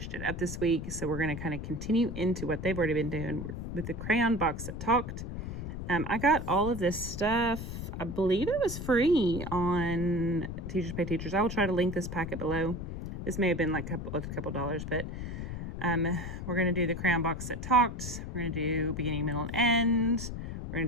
it up this week. So we're going to kind of continue into what they've already been doing with the crayon box that talked. I got all of this stuff. I believe it was free on Teachers Pay Teachers. I will try to link this packet below. This may have been like a couple dollars, but we're going to do the crayon box that talked. We're going to do beginning, middle, and end. We're going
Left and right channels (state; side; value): noise; left; rumble, 6 dB below the sound